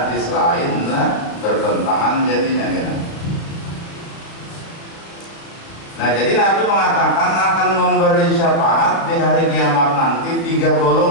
lain lah bertentangan jadinya kena. Nah jadi Nabi mengatakan akan memberi syafaat di hari kiamat nanti 3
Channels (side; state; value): right; late; 36 ms